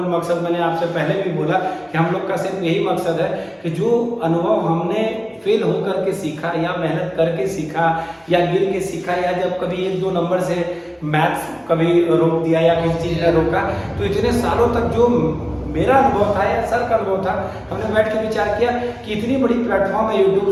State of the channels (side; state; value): both; identical; correlation 1.00